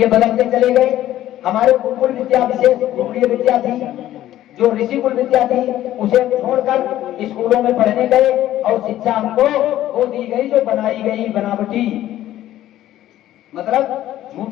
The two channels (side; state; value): right; quieter; 13.4 dB